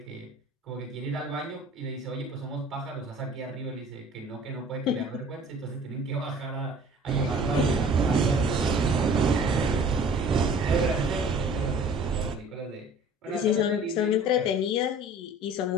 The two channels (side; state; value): both; normal; correlation 0.47